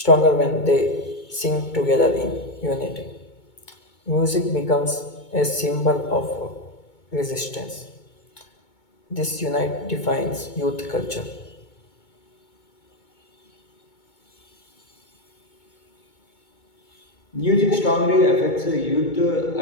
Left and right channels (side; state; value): right; late; 2.2 ms